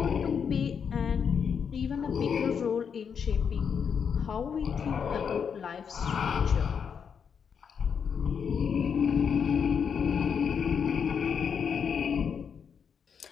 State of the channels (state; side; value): quieter; right; 6.9 dB